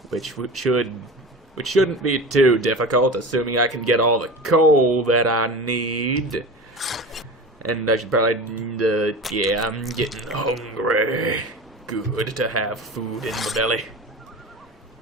which shouldn't be too difficult, assuming I can get all the coal that I need. And I should probably, yeah, I'm getting hungry. Good to have food in the belly.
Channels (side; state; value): both; normal; correlation 0.32